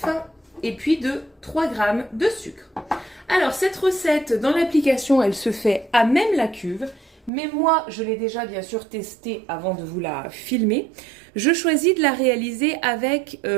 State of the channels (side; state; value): left; drops out; at 7.3 s